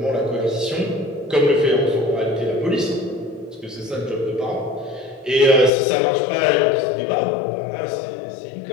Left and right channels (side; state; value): right; drops out; at 5.7 s